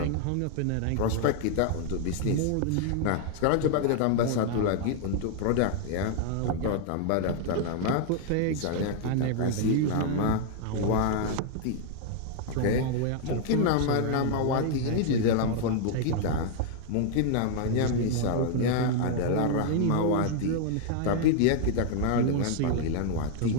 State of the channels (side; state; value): both; different; correlation 0.00